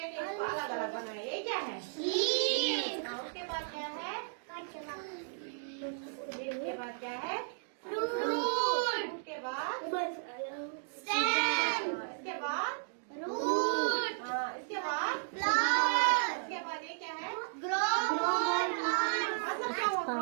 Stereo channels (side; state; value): left; silent; digital silence